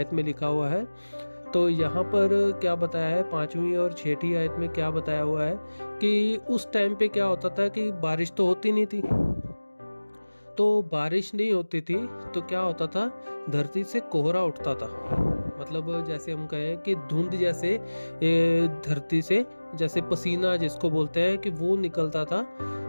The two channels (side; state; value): both; inverted; correlation -1.00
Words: में लिखा हुआ है। तो यहाँ पर क्या बताया है, 5वीं और 6ठी आयत में क्या बताया हुआ है कि उस टाइम पे क्या होता था कि बारिश तो होती नहीं थी। तो बारिश नहीं होती थी तो क्या होता था, धरती से कोहरा उठता था। मतलब जैसे हम कहें कि धुंध जैसे धरती से जैसे पसीना जिसको बोलते हैं कि वो निकलता था।